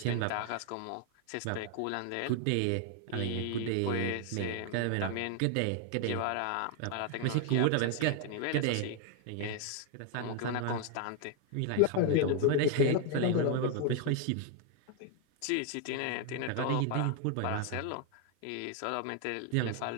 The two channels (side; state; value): both; different; correlation 0.00